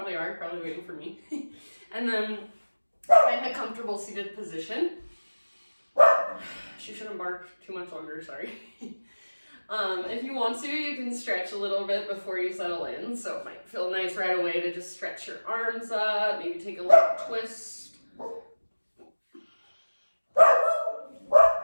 are, probably waiting for me. And then find a comfortable seated position. She shouldn't bark too much longer, sorry. If you want to, you can stretch a little bit before you settle in. So it might feel nice right away to just stretch your arms up, maybe take a little twist.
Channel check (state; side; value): inverted; both; correlation -1.00